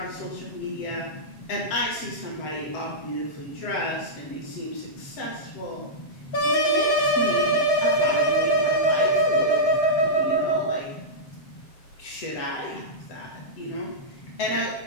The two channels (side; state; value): right; late; 7.4 ms